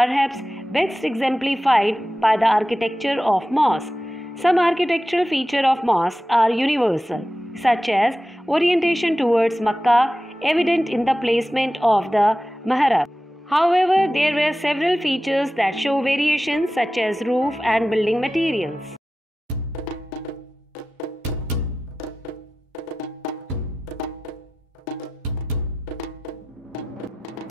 best exemplified by the architecture of mosques. Some architectural features of mosques are universal, such as orientation towards Makkah, evident in the placement of the mihrab. However, there were several features that show variations, such as roof and building materials.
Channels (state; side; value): normal; both; correlation 0.93